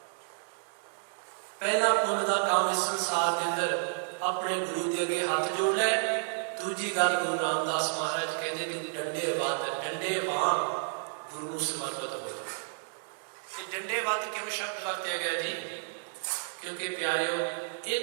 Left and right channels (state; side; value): silent; left; digital silence